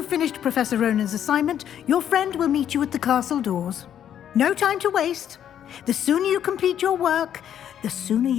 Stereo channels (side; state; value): right; quieter; 9.9 dB